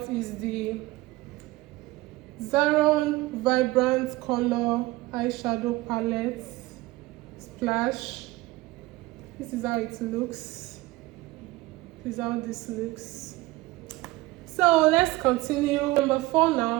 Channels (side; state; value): left; quieter; 19.4 dB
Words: is the Zaron Vibrant Color eyeshadow palette, Splash. This is how it looks. This is how this looks. So let's continue. Number 4